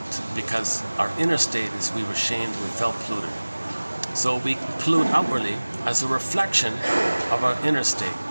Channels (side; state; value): both; inverted; correlation -1.00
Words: because our inner state is we were shamed, we felt polluted. So we pollute outwardly as a reflection of our inner state.